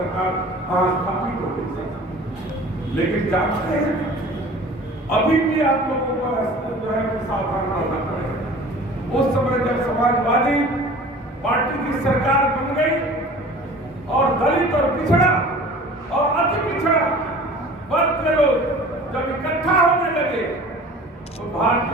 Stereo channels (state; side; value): normal; both; correlation 0.44